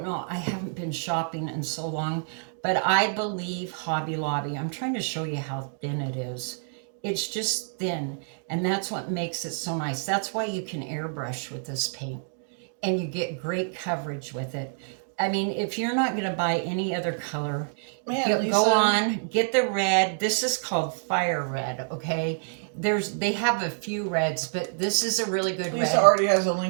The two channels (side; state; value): left; silent; digital silence